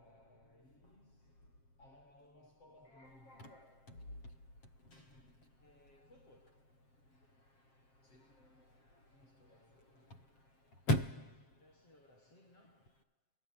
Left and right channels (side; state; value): right; late; 7.5 ms